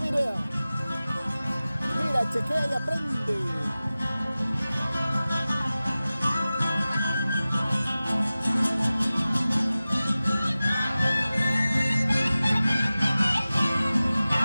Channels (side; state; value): both; inverted; correlation -0.97